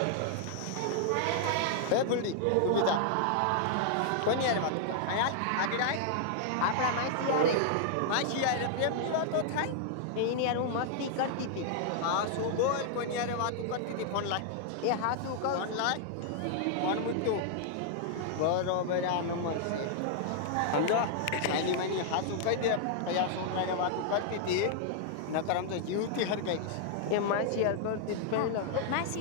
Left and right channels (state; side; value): different; both; correlation -0.01